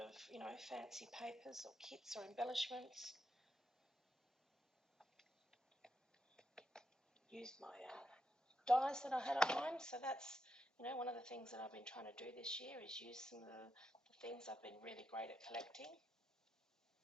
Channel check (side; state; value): both; normal; correlation 0.83